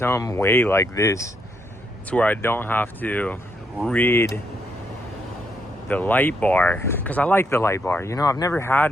way like this to where I don't have to rid the light bar, because I like the light bar. You know, I've never had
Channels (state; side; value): normal; both; correlation 0.76